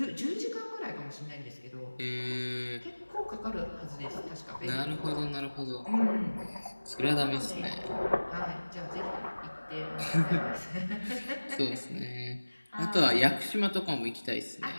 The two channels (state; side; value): inverted; both; correlation -1.00